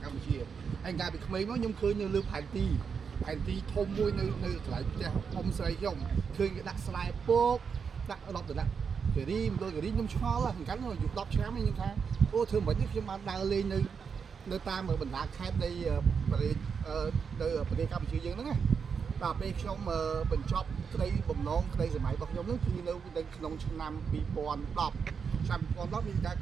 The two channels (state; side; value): quieter; left; 6.2 dB